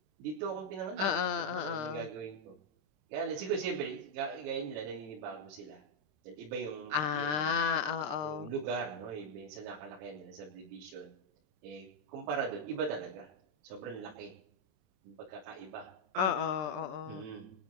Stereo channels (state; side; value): late; left; 26 ms